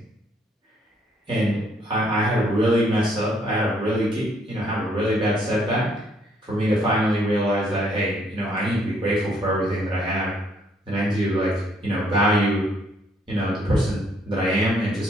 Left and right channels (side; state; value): both; normal; correlation 0.67